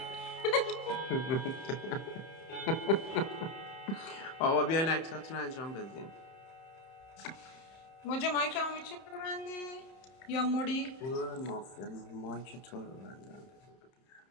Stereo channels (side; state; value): right; late; 30 ms